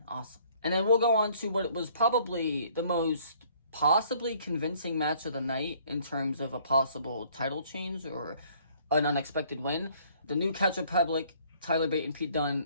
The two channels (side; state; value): both; inverted; correlation -0.59